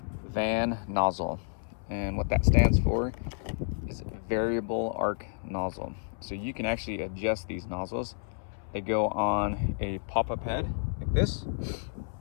van nozzle. And what that stands for is variable arc nozzle. So you can actually adjust these nozzles. They go on a pop-up head like this,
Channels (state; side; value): silent; right; 58 dB below the other